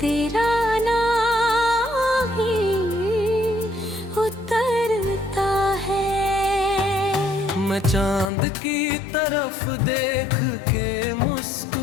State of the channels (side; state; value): right; drops out; at 8.3 s